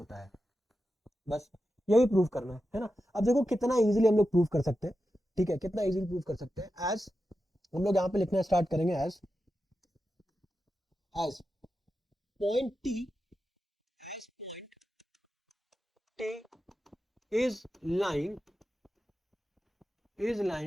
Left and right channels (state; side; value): normal; both; correlation 0.91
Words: है, बस यही प्रूव करना है ना। अब देखो कितना इजीली हम लोग प्रूव कर सकते हैं, ठीक है, कितना इजीली प्रूव कर सकते हैं। एज हम लोग यहाँ पे लिखना स्टार्ट करेंगे, as point T, as point T is